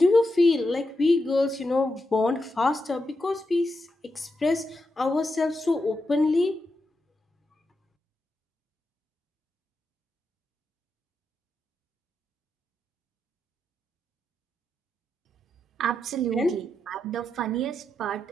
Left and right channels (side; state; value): both; normal; correlation 0.86